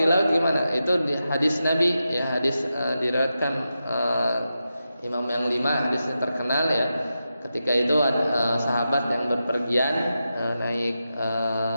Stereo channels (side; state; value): both; inverted; correlation -0.89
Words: di laut gimana? Itu di hadis Nabi ya, hadis diriwayatkan Imam yang 5, hadisnya terkenal ya. Ketika itu sahabat yang berpergian naik